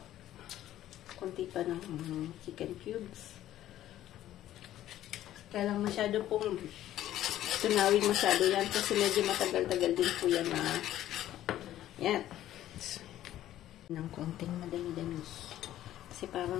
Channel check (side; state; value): right; quieter; 13.0 dB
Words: Konti pa ng chicken cubes. Kaya lang masyado pong tunawin masyado yan kasi medyo matagal-tagal din po yan na yan. Ng konting madami-dami. Kasi